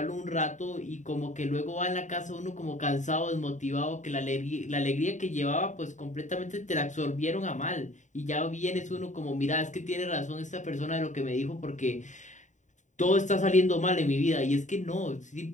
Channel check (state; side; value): late; right; 0.36 ms